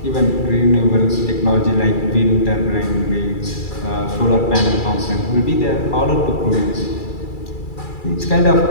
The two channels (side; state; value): right; late; 2.3 ms